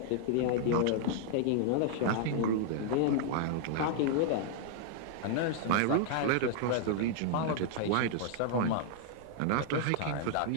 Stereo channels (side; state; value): both; different; correlation -0.01